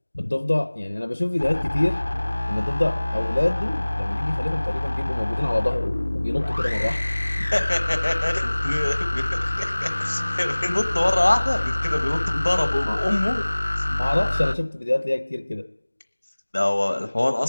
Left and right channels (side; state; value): both; inverted; correlation -1.00